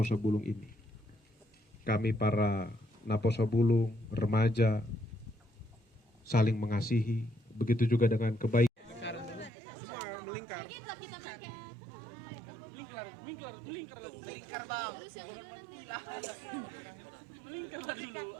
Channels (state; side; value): drops out; left; at 9.5 s